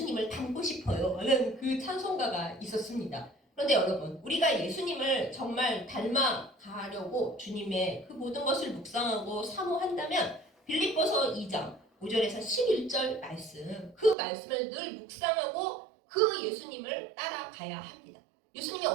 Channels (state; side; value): drops out; left; at 14.2 s